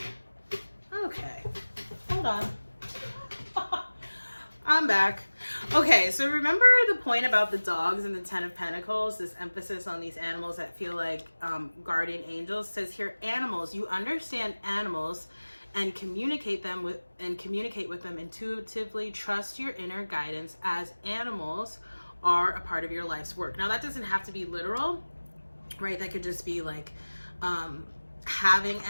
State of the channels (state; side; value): inverted; both; correlation -1.00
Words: Okay. Hold on. I'm back. Okay, so remember the point about the dogs and the 10 of Pentacles, this emphasis on these animals that feel like guardian angels. It says here, animals, you understand animals and communicate with them intuitively. Trust your inner guidance as animals are a part of your life's work. Now that doesn't have to be literal, right? That could just be like having